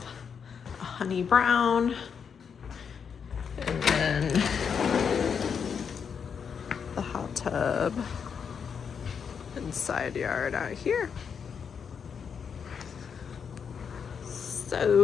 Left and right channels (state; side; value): quieter; right; 6.8 dB